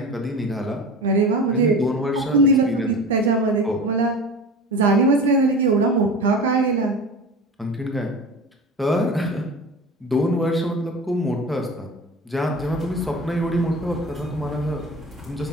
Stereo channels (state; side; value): normal; both; correlation 0.33